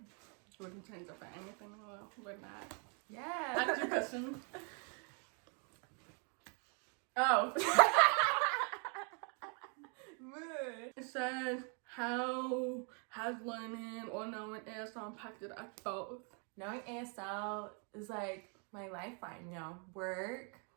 wouldn't change it for anything. We're not. Yeah. That's your question. Oh. It says, how has learning or knowing ASL impacted us both? Knowing ASL is like my lifeline, you know, work,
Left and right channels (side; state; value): left; quieter; 38.5 dB